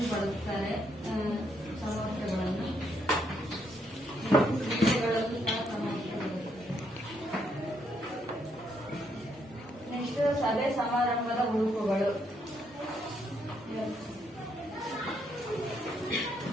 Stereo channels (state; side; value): normal; both; correlation 0.75